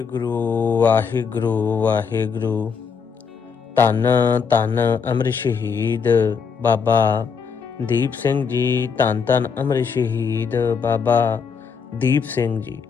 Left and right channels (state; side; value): quieter; right; 6.1 dB